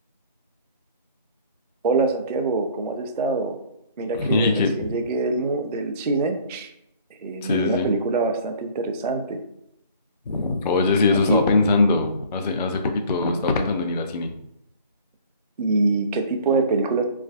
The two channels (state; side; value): inverted; both; correlation -0.50